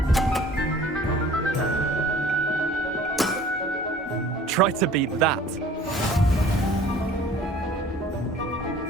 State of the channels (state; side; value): normal; both; correlation 0.50